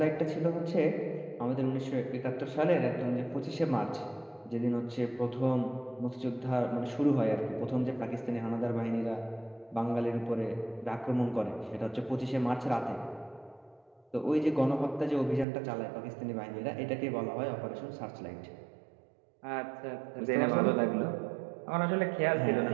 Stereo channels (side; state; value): left; drops out; at 15.5 s